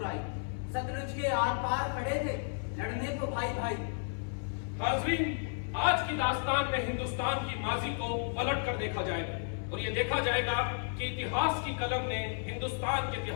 सतलुज के आर पार खड़े थे, लड़ने को भाई भाई। हाजरीन, आज की दास्तान में हिंदुस्तान की माजी को पलट कर देखा जाएगा और ये देखा जाएगा कि इतिहास की कलम ने हिंदुस्तान के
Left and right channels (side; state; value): right; silent; digital silence